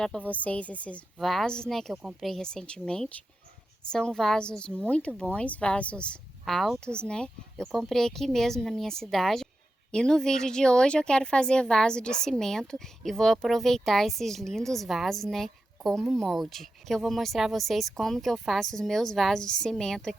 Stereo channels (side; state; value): both; normal; correlation 0.90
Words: para vocês esses vasos, que eu comprei recentemente. São vasos muito bons, vasos altos, Eu comprei aqui mesmo na minha cidade. E no vídeo de hoje eu quero fazer vaso de cimento e vou aproveitar esses lindos vasos, como molde. Que eu vou mostrar a vocês como que eu faço os meus vasos de cimento